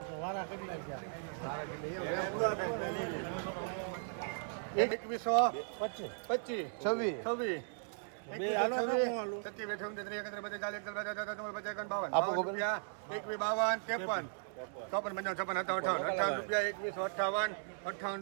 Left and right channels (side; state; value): left; silent; digital silence